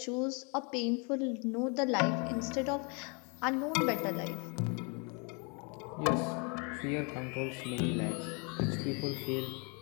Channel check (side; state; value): right; quieter; 34.0 dB